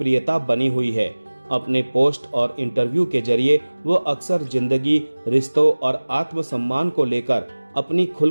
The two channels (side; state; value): both; inverted; correlation -1.00